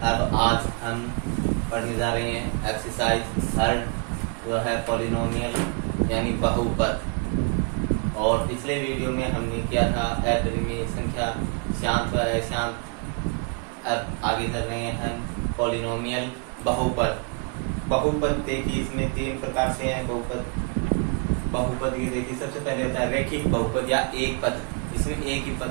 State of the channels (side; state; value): left; quieter; 35.4 dB